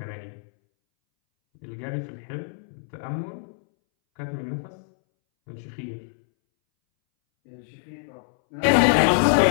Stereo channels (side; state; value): right; silent; 62 dB below the other